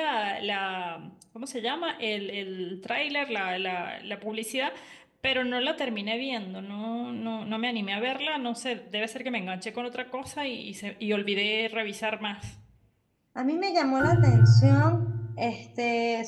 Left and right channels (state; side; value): identical; both; correlation 1.00